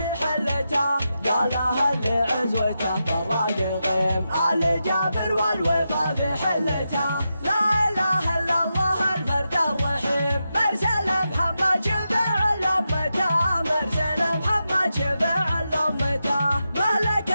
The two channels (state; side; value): inverted; both; correlation -0.88